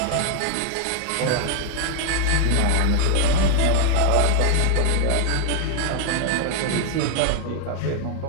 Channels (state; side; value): different; both; correlation 0.00